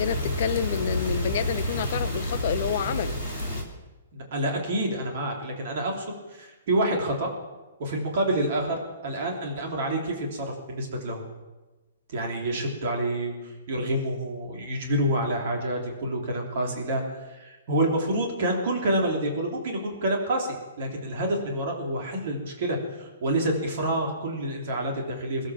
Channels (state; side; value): inverted; both; correlation -0.52